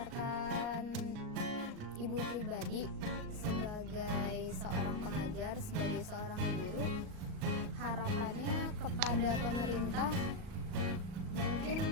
Ibu pribadi sebagai seorang pengajar, sebagai seorang guru, harapannya kepada pemerintah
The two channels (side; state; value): left; late; 38 ms